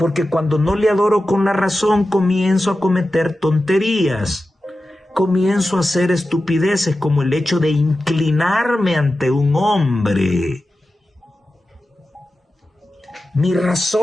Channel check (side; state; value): both; normal; correlation 0.93